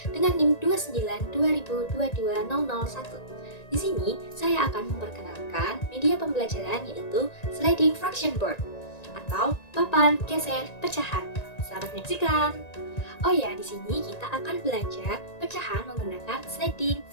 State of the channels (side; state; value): right; late; 1.9 ms